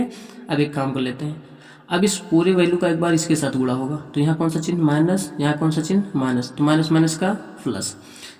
अब एक काम कर लेते हैं, अब इस पूरे वैल्यू का एक बार इसके साथ गुणा होगा तो यहाँ कौन सा चिन्ह? माइनस। यहाँ कौन सा चिन्ह? माइनस। तो माइनस माइनस का प्लस।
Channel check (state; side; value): identical; both; correlation 1.00